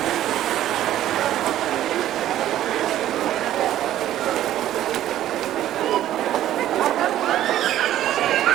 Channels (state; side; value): quieter; left; 12.7 dB